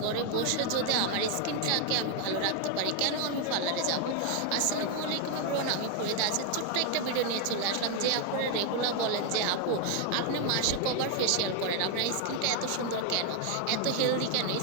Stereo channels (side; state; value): both; different; correlation 0.01